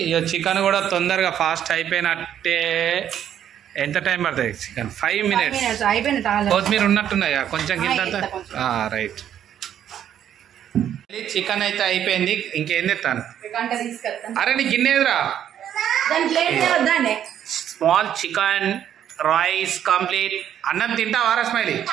ఇక చికెన్ కూడా తొందరగా ఫాస్ట్ అయిపోయినట్టే. ఎంత టైం పడుతుంది? Chicken 5 minutes. కొత్తిమీర ఉన్నట్టున్నాయా కొంచెం కింద? రైట్. చికెన్ అయితే అయిపోయింది, ఇంకేం తెస్తాను. అరే నీ గిన్నెదురా, స్మాల్ చికెన్ రైస్ కంప్లీట్. అన్నం తింటావా స్మైలీ?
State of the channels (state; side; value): quieter; left; 10.1 dB